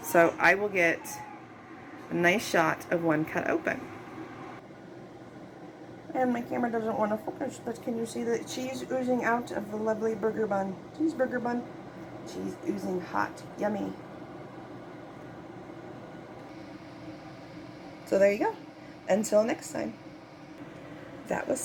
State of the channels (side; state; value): both; identical; correlation 1.00